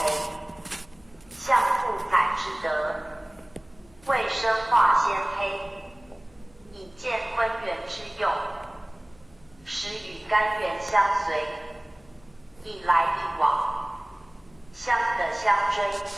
象父载之德，为生化先胚，以见昆元之用，使与干元相随，一来一往，相得相追，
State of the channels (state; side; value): noise; left; hum, 29 dB below the sound